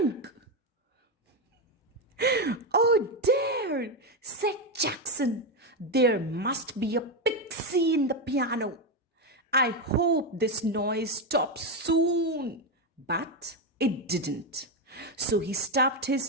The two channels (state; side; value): normal; both; correlation 0.09